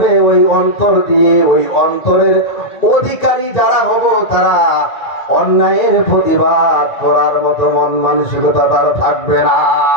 ওই অন্তর দিয়ে, ওই অন্তরের অধিকারী যারা হব, তারা অন্যায়ের প্রতিবাদ করার মতো মন মানসিকতা তার থাকবে না।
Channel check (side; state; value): right; late; 1.9 ms